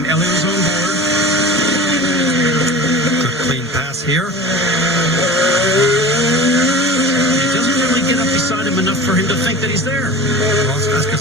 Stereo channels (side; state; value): both; normal; correlation 0.36